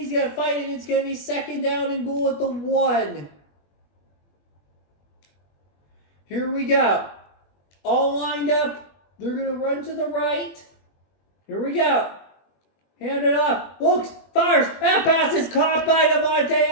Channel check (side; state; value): right; late; 21 ms